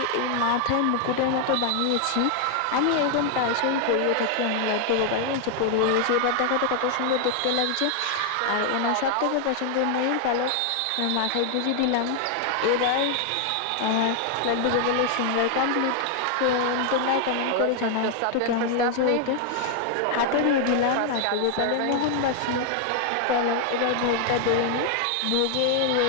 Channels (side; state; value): both; different; correlation 0.00